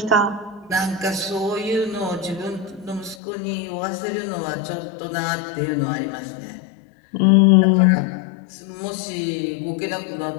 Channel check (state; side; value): drops out; right; at 3.2 s